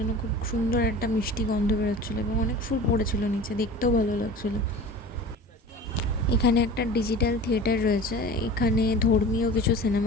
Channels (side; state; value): both; normal; correlation 0.38